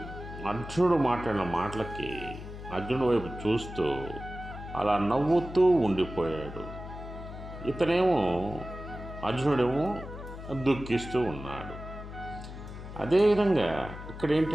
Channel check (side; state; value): left; noise; hum, 11 dB below the sound